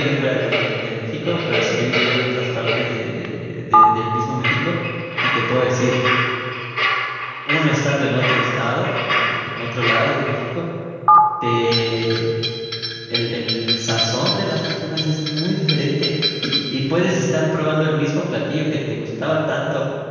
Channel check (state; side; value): identical; both; correlation 1.00